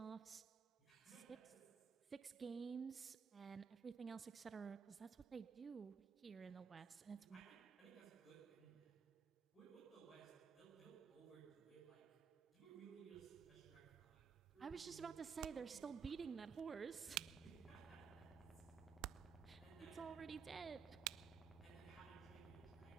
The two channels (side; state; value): left; quieter; 6.3 dB